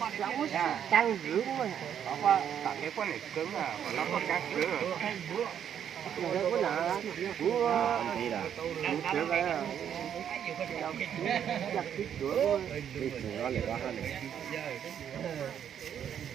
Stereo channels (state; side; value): quieter; left; 9.1 dB